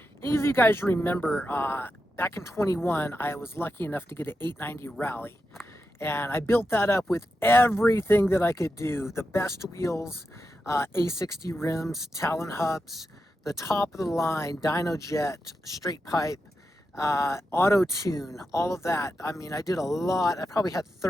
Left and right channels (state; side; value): normal; both; correlation 0.88